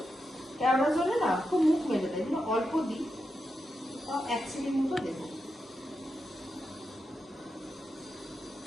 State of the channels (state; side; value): normal; both; correlation 0.87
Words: জলে না খুব মুখ মেলে দেয়, অল্প দিই, তাও 1 চিলি মতো দেবো।